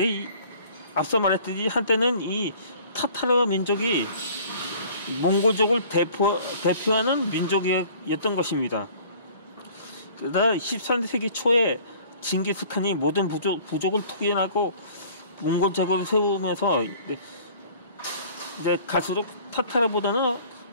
앞서 말했듯이 한때는 이 타타르 민족이 몽골족을 대표하는 민족이었던 것입니다. 그러다 13세기 초에 징기스칸이 모든 부족을 투기하고 몽골제국을 세우면서 이제 갈수록 타타르보다는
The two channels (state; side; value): inverted; both; correlation -0.51